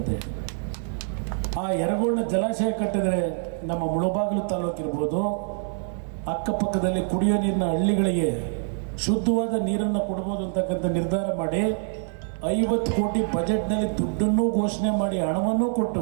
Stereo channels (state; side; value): silent; left; 61 dB below the other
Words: ಆ ಯರಗೋಳಿನ ಜಲಾಶಯ ಕಟ್ಟಿದರೆ ನಮ್ಮ ಮುಳಬಾಗಿಲು ತಾಲೂಕಿರ್ಬೋದು, ಅಕ್ಕಪಕ್ಕದಲ್ಲಿ ಕುಡಿಯೋ ನೀರಿನ ಹಳ್ಳಿಗಳಿಗೆ ಶುದ್ಧವಾದ ನೀರನ್ನು ಕೊಡ್ಬೋದು ಅಂತಕ್ಕಂಥ ನಿರ್ಧಾರ ಮಾಡಿ 50 ಕೋಟಿ ಬಜೆಟ್ನಲ್ಲಿ ದುಡ್ಡನ್ನು ಘೋಷಣೆ ಮಾಡಿ ಹಣವನ್ನು ಕೊಟ್ಟು